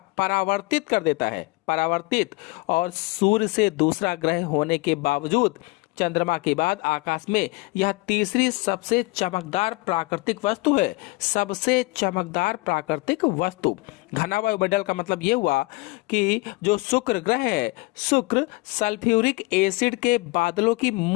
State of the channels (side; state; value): right; quieter; 24.4 dB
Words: परावर्तित कर देता है, परावर्तित। और सूर्य से दूसरा ग्रह होने के बावजूद चंद्रमा के बाद आकाश में यह तीसरी सबसे चमकदार प्राकृतिक वस्तु है, सबसे चमकदार प्राकृतिक वस्तु। घना वायुमंडल का मतलब यह हुआ कि जो शुक्र ग्रह है, शुक्र सल्फ्यूरिक एसिड के बादलों की